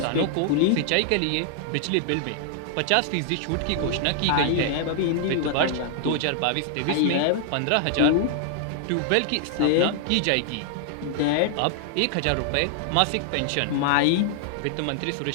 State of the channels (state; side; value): different; both; correlation 0.00